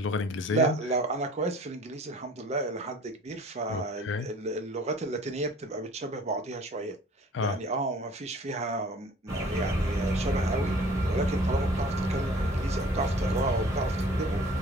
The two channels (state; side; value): normal; both; correlation 0.49